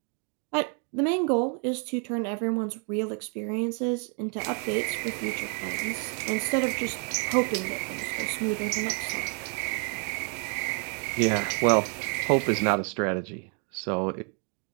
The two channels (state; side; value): quieter; left; 38.8 dB